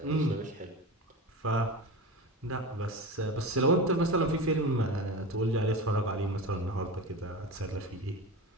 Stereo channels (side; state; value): both; normal; correlation 0.27